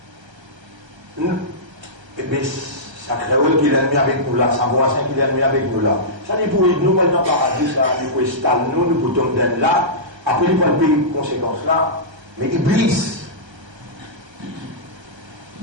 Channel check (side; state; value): left; late; 1.3 ms